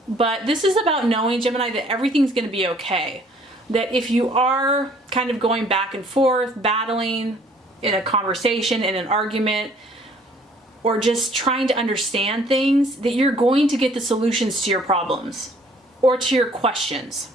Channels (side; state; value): both; normal; correlation 0.58